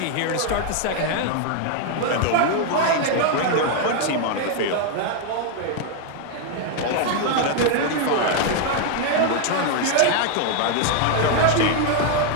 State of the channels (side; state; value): both; different; correlation 0.00